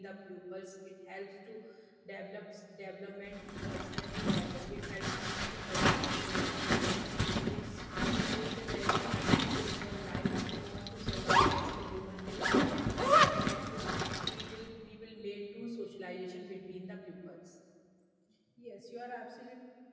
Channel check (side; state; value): both; identical; correlation 1.00